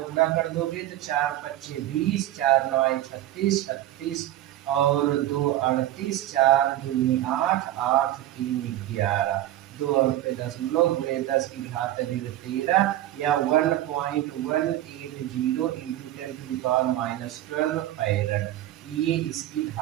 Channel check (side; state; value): left; quieter; 14.0 dB